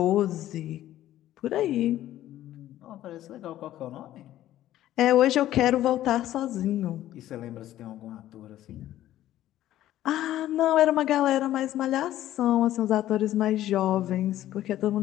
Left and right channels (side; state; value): right; quieter; 13.4 dB